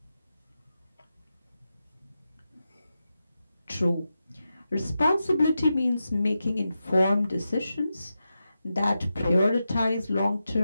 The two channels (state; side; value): inverted; both; correlation -0.90